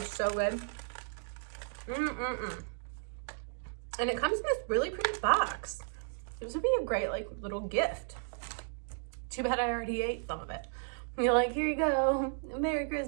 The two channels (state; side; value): silent; left; digital silence